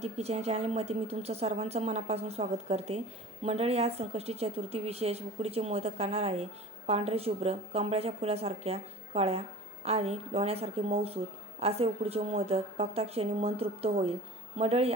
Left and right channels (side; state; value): both; normal; correlation 0.40